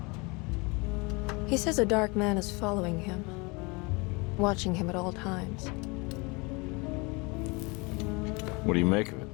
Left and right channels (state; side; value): quieter; right; 27.8 dB